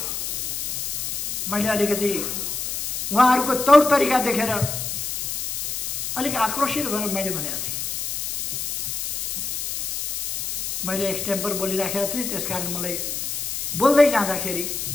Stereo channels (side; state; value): left; noise; hiss, 3 dB below the sound